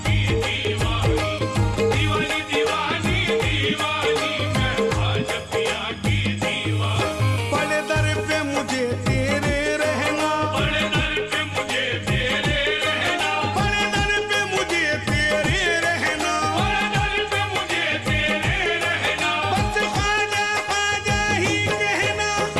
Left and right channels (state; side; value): identical; both; correlation 1.00